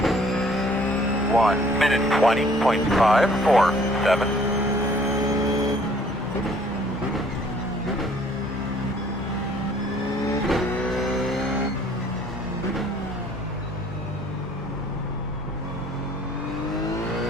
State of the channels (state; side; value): normal; both; correlation 0.58